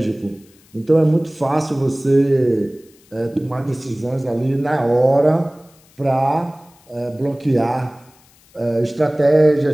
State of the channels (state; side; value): noise; left; hiss, 30 dB below the sound